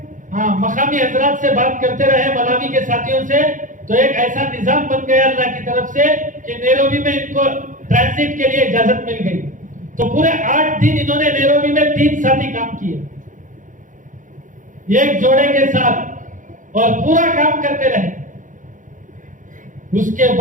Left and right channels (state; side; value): late; left; 0.38 ms